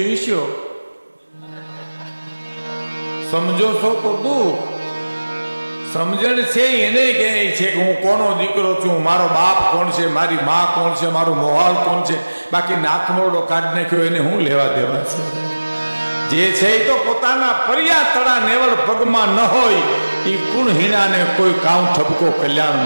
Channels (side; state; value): both; inverted; correlation -1.00